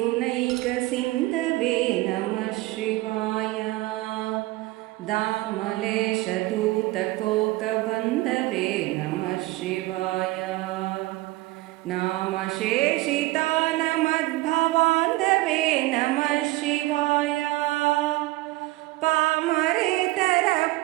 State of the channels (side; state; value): left; quieter; 19.6 dB